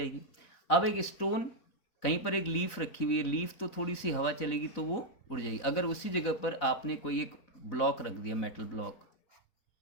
अब एक स्टोन, कहीं पर एक लीफ रखी हुई है, लीफ तो थोड़ी सी हवा चलेगी तो वो उड़ जाएगी। अगर उसी जगह पर आपने कोई एक ब्लॉक रख दिया, मेटल ब्लॉक,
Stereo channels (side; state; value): right; late; 4.0 ms